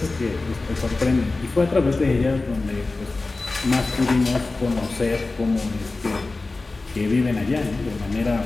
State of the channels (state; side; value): quieter; right; 3.4 dB